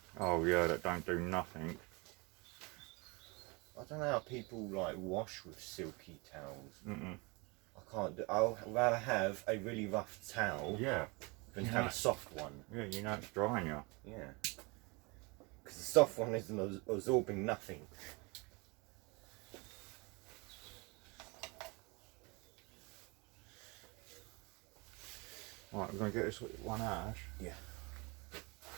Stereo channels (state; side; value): quieter; left; 28.1 dB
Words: Oh yeah, that don't do nothing. I don't know how people like wash with silky towels. Mm-mm. I can't do. I'll rather have a really rough towel Yeah. than have a soft one. Yeah, you know it's drying you. Yeah. Because the soft one isn't absorbing nothing. Right, we're going to get this one out, Ash. Yeah.